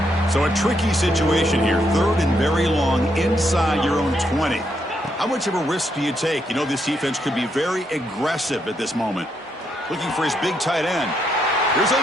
So a tricky situation here. 3rd and very long inside your own 20. How much of a risk do you take? You know this defense could be very aggressive at this moment. Looking for his big tight end. Here's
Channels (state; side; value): normal; both; correlation 0.77